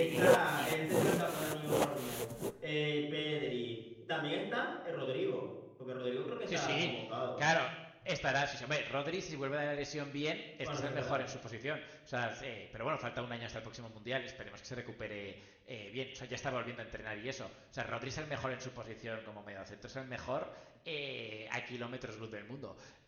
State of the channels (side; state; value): both; identical; correlation 1.00